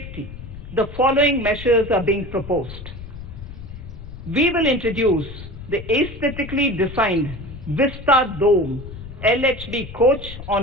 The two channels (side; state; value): left; noise; rumble, 12 dB below the sound